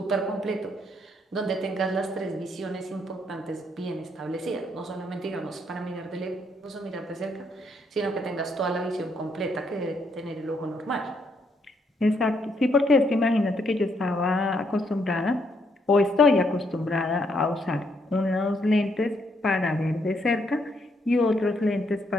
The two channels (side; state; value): both; normal; correlation 0.74